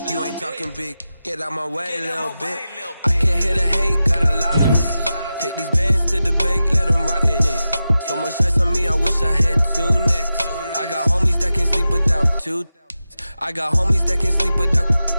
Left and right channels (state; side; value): inverted; both; correlation -0.93